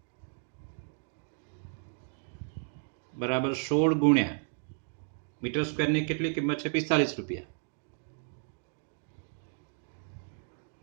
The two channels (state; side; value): silent; left; 56 dB below the other